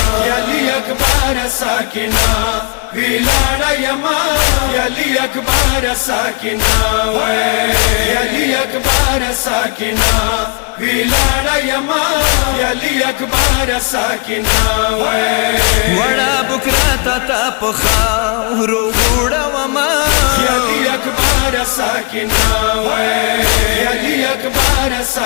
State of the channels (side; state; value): right; quieter; 32.8 dB